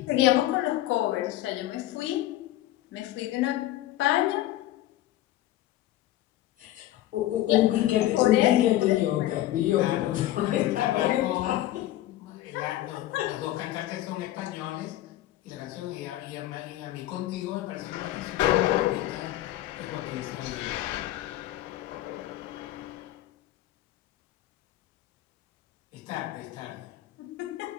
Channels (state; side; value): quieter; right; 14.7 dB